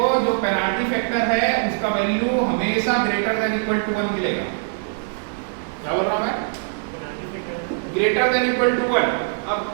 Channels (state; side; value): silent; left; digital silence